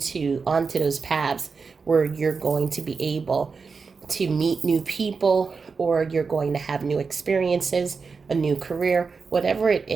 those paths where you're going to be able to meet new people, or you're going to have new experiences, a new career, whatever it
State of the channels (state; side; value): quieter; left; 5.0 dB